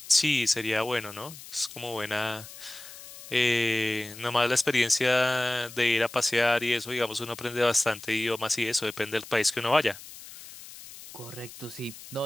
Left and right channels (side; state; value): left; noise; hiss, 16 dB below the sound